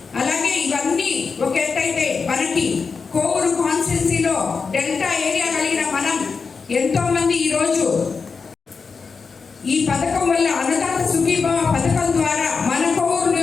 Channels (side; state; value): right; quieter; 5.1 dB